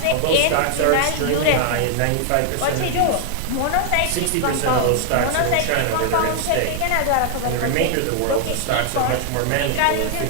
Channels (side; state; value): both; different; correlation 0.00